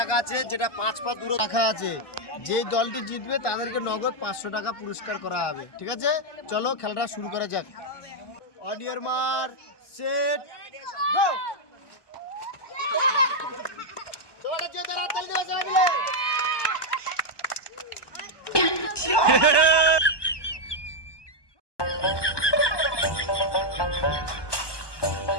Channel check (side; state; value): right; late; 1.2 ms